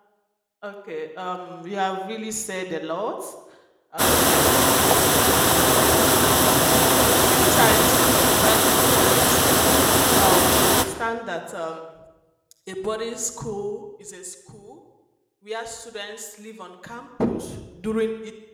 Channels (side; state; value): both; identical; correlation 1.00